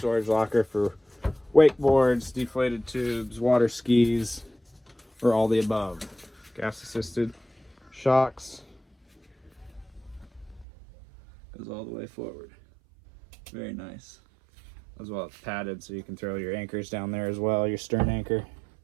locker for wakeboards, deflated tubes, water skis, or all the above. Gas assisted shocks, goes all the way forward. Very nice. As well, it's padded so you can throw your anchors down there as well, your stern anchor.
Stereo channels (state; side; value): drops out; left; at 10.7 s